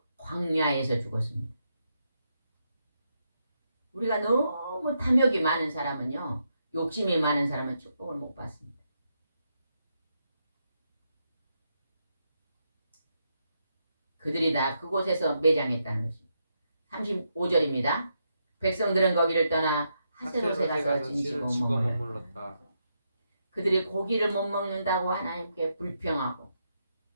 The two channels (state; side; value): inverted; both; correlation -0.81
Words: 광야에서 죽었습니다. 우리가 너무 탐욕이 많은 사람은요, 욕심이 많은 사람은 축복을 못 받습니다. 그들이 다 그곳에서 매장했다는 것입니다. 35절입니다. 백성들은 거기를 떠나 하세롯에 가서 진치고 머물렀다. 그들이 고기를 못 먹는다고 하나님께 불평하고